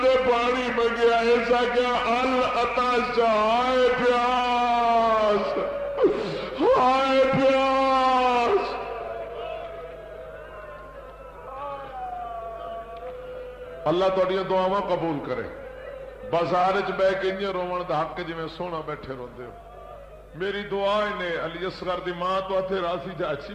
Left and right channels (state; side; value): identical; both; correlation 1.00